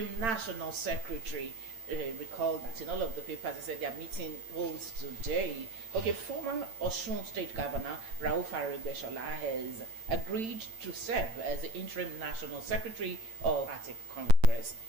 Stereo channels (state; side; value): late; left; 8.9 ms